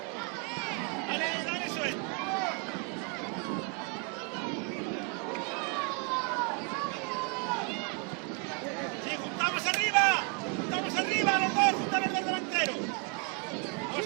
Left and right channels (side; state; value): left; quieter; 34.7 dB